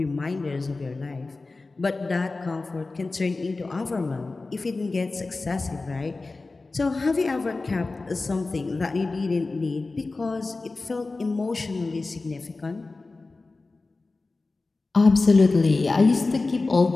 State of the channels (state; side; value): quieter; right; 3.5 dB